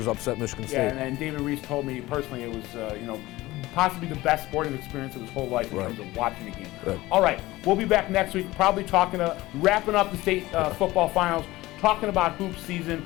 upset Michigan State. Yeah, and David Reese told me personally it was possibly the best sporting experience of his whole life in terms of watching a game. All right, we'll be back next week, probably wrapping up the state football finals, talking about hoop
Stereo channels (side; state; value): right; quieter; 18.5 dB